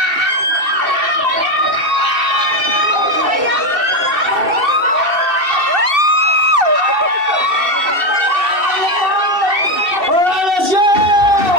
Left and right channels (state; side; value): late; left; 2.7 ms